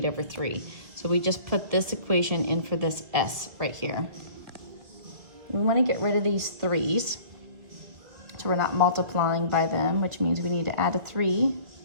over 3. So we just put this equation in for this S right here. We want to get rid of these 3's. So we're not multiplying by them, which means we need to add a 3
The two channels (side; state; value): left; late; 1.9 ms